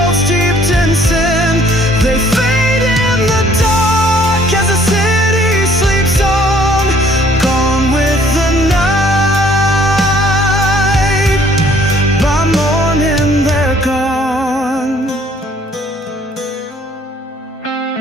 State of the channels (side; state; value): both; normal; correlation 0.60